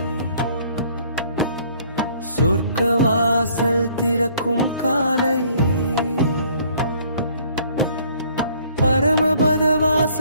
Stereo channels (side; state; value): both; inverted; correlation -0.60